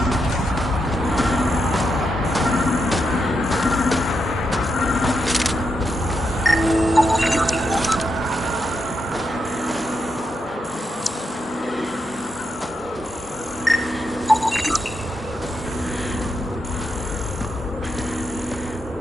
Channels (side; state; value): both; normal; correlation 0.83